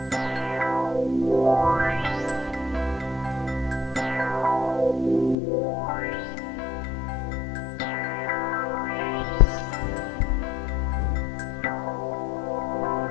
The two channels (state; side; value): drops out; right; at 5.4 s